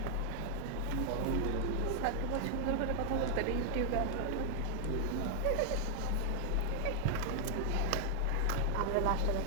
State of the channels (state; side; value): different; both; correlation 0.00